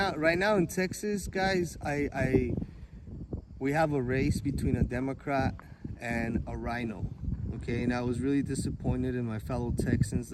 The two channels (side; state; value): both; identical; correlation 1.00